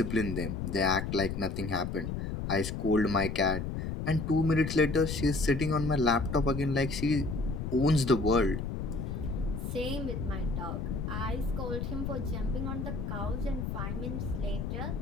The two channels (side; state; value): left; noise; rumble, 4 dB below the sound